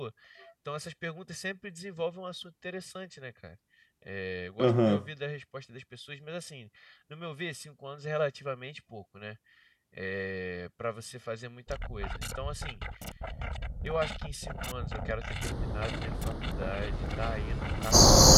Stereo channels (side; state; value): both; identical; correlation 1.00